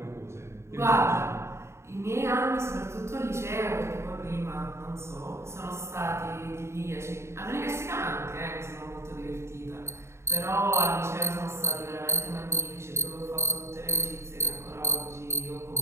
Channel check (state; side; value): late; left; 0.13 ms